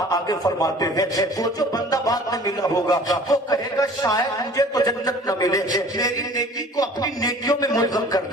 आगे फरमाते हैं वो जो बंदा बाद में मिला होगा वो कहेगा शायद मुझे तो जन्नत न मिले, मेरी नेकी को अपनी नेकियों में मुल्ज़म कर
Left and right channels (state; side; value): normal; both; correlation 0.47